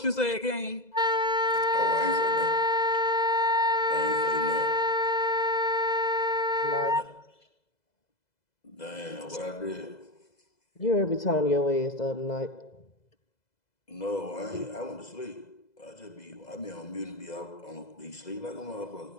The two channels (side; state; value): right; late; 2.0 ms